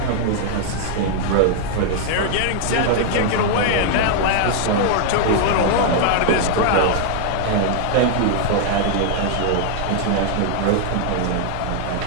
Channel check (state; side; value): different; both; correlation 0.00